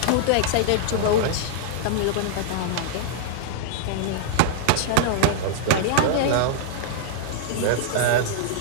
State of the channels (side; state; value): both; different; correlation -0.01